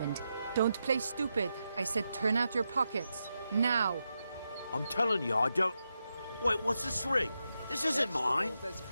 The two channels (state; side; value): inverted; both; correlation -0.86